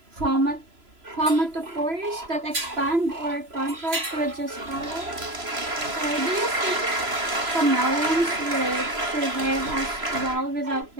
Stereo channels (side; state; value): left; late; 3.0 ms